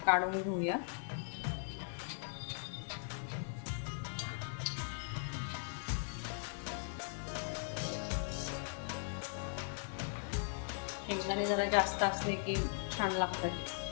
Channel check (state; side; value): silent; right; digital silence